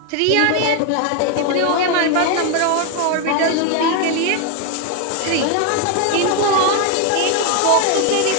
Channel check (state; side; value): different; both; correlation 0.01